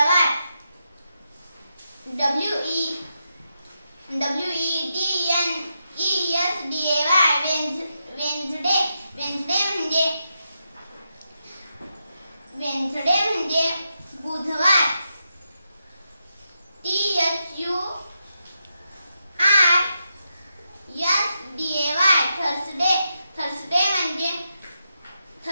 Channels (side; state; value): both; inverted; correlation -0.85